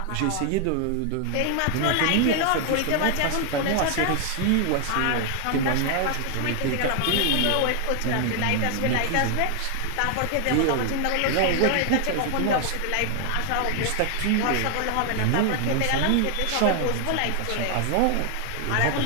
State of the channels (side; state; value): both; different; correlation 0.00